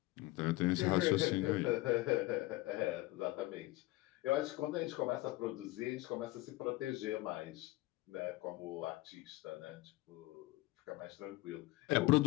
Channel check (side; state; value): right; quieter; 19.4 dB